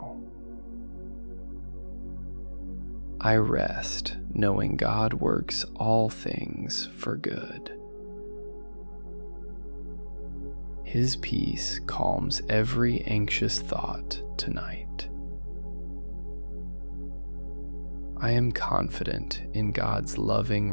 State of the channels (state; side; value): inverted; both; correlation -1.00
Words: I rest knowing God works all things for good. His peace calms every anxious thought tonight. I am confident in God's loving